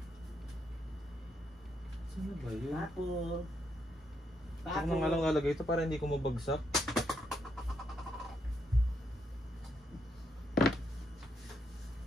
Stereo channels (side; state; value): both; normal; correlation 0.78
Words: Saan ba yun? Papo. Ako na nga lang lalagay ito para hindi ko mabagsak.